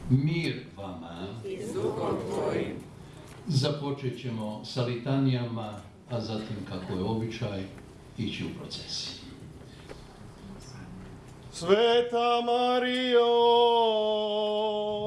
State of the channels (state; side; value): identical; both; correlation 1.00